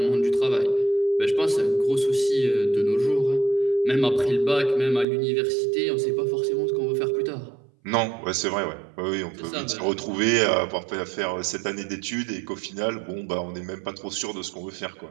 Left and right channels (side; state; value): left; drops out; at 5.1 s